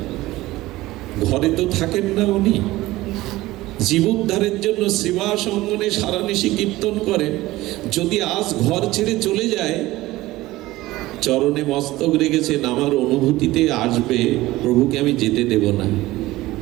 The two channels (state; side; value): quieter; left; 17.9 dB